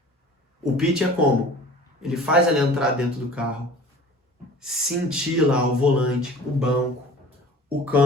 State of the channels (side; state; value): both; normal; correlation 0.44